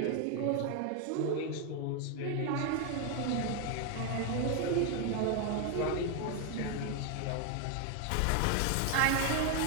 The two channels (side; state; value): both; different; correlation 0.01